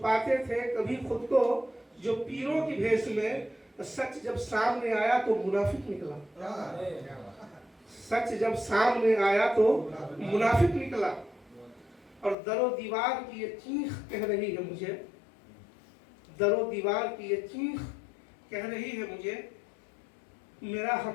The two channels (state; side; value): drops out; right; at 12.4 s